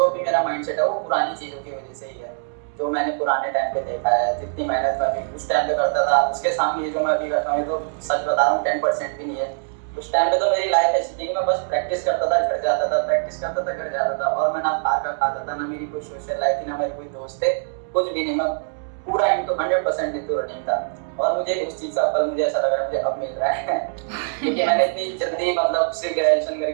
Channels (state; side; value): silent; left; digital silence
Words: भी मेरा माइंडसेट है वो पुरानी चीजों की वजह से ही है। जो मैंने पुराने टाइम पे देखा है, जितनी मेहनत मैं भी उस टाइम पे करता था, उसके सामने जो मैं अभी करता हूँ तो सच बता रहा हूँ 10% भी नहीं है। उस टाइम पे तो मेरी लाइफ ऐसी थी कि मैं बस प्रैक्टिस करता था, घर जाता था, प्रैक्टिस करता था, घर जाता था, और मैं ना बाहर का खाता था, ना मेरी कोई सोशल लाइफ थी, ना मेरे कोई दोस्त थे, कुछ भी नहीं। मैं पूरा इनटू 100% इनटू रनिंग था। और मुझे उस चीज का फल मुझे ऐसा लग रहा है मुझे अब मिल रहा है क्योंकि मैंने इतनी जल्दी मतलब सिर्फ ग्रेजुएशन